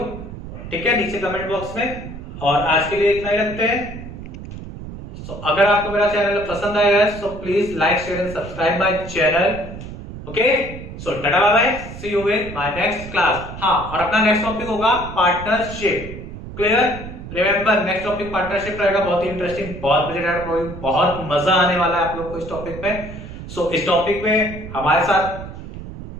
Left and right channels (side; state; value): right; noise; rumble, 11 dB below the sound